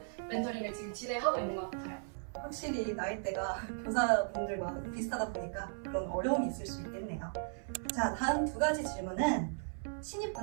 멘토링을 지금 진행하고 있는 것 같아요. 확실히 나이대가 교사분들과 비슷하다 보니까 그런 어려움이 있을 수 있겠네요. 자, 다음 두 가지 질문은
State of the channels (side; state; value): left; silent; 53 dB below the other